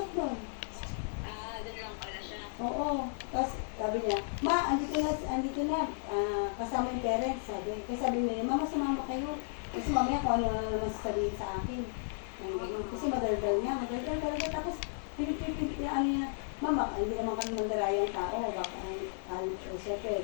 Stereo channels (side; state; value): right; silent; digital silence